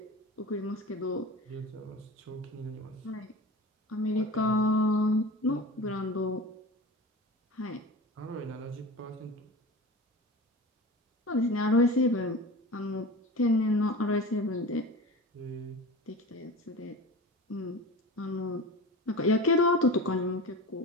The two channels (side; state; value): both; normal; correlation 0.33